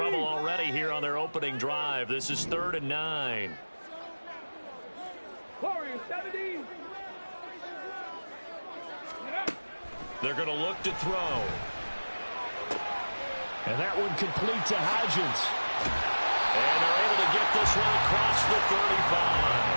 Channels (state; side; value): inverted; both; correlation -1.00